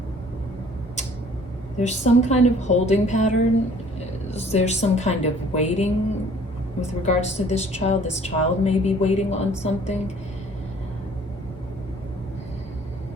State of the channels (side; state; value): both; normal; correlation 0.55